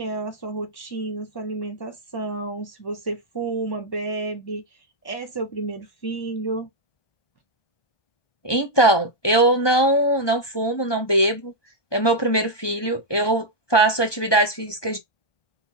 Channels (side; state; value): right; late; 1.2 ms